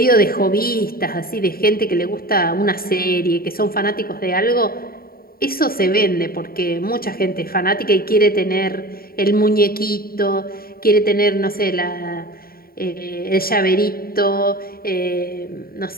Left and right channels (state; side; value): late; right; 0.43 ms